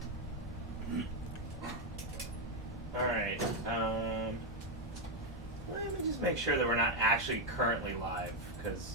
All right. Let me just make sure that we're not actually currently live, because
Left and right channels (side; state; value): both; normal; correlation 0.03